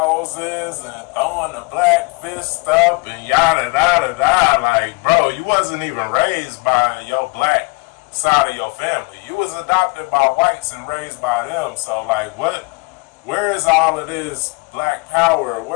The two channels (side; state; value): right; quieter; 29.9 dB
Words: and throwing the black fist up and yada yada yada. Like, bro, you wasn't even raised by your black side of your family. You was adopted by whites and raised by them. So like, what? Where is all of this black power?